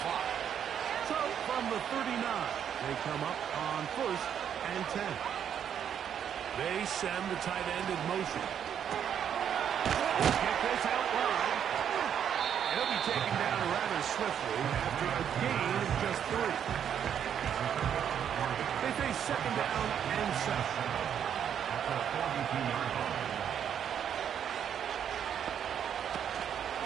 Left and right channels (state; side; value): quieter; left; 8.8 dB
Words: clock. So from the 39, they come up on 1st and 10. They send the tight end in motion. They'll get this out wide. He'll be taken down rather swiftly after a gain of just 3. They face 2nd down and 7. At the 42-yard line.